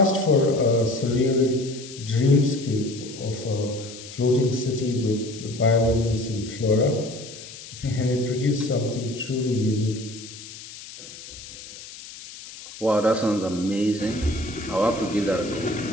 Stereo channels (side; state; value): left; noise; hiss, 15 dB below the sound